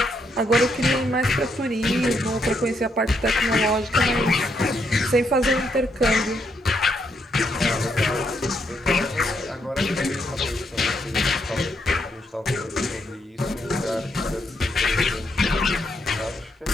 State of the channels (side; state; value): both; normal; correlation 0.77